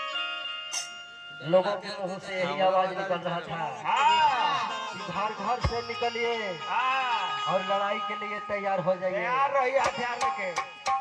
लोगों के मुंह से यही आवाज निकल रहा था कि घर घर से निकलिए और लड़ाई के लिए तैयार हो जाइए। तैयार रहिए हथियार लेके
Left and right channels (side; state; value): both; identical; correlation 1.00